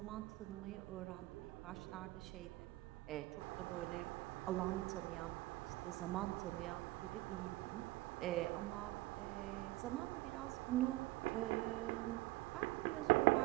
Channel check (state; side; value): quieter; left; 19.2 dB